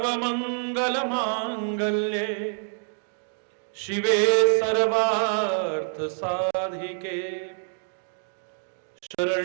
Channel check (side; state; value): left; silent; 61 dB below the other